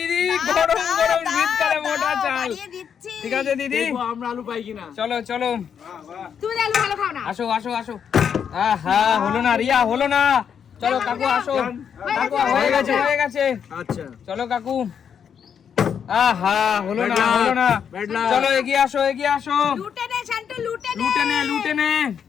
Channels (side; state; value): right; quieter; 7.7 dB